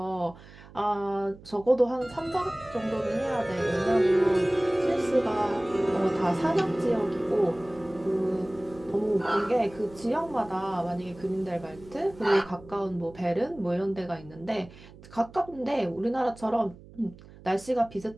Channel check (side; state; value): right; noise; hum, 20 dB below the sound